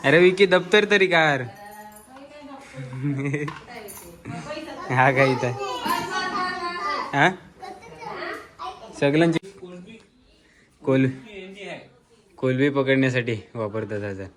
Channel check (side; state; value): both; identical; correlation 1.00